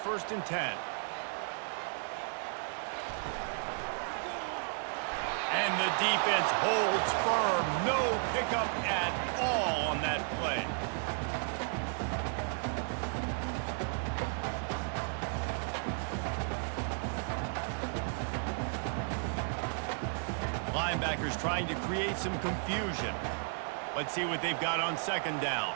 and 10. And the defense holds firm. No pickup at all on that play. Linebackers trying to create some confusion. Let's see what they've got on 2nd down.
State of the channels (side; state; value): left; silent; 55 dB below the other